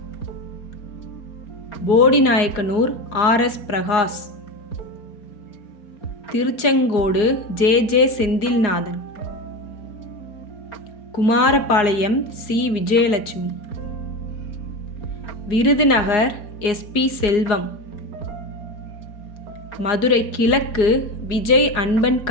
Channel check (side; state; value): right; late; 4.8 ms